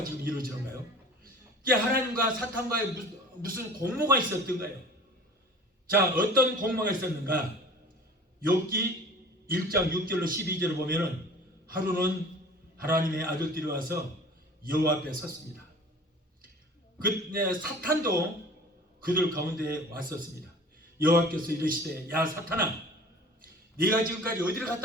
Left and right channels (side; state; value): both; normal; correlation 0.43